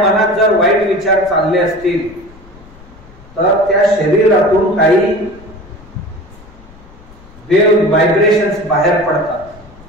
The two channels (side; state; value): left; noise; rumble, 23 dB below the sound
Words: जर वाईट विचार चालले असतील तर त्या शरीरातून काही वेव्ह व्हायब्रेशन्स बाहेर पडतात,